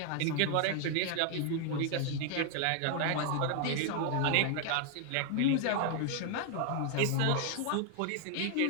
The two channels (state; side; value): different; both; correlation 0.00